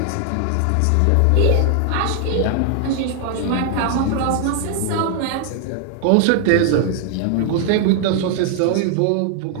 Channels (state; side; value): different; both; correlation 0.00